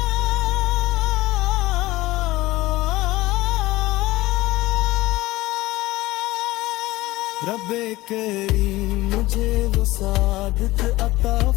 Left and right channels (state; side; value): quieter; right; 18.7 dB